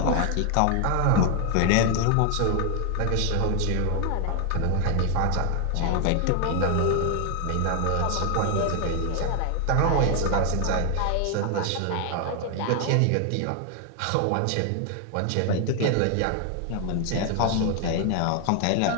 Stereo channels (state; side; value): different; both; correlation 0.00